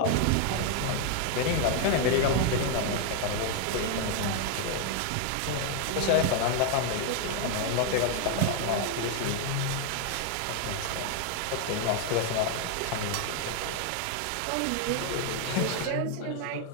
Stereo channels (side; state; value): both; different; correlation 0.00